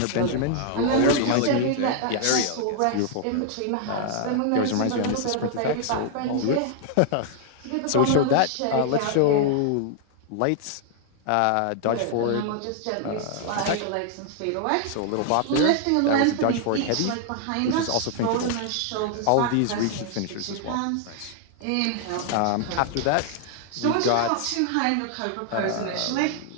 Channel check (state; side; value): different; both; correlation 0.00